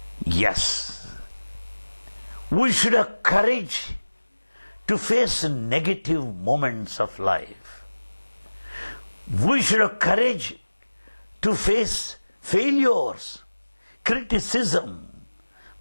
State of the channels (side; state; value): both; inverted; correlation -1.00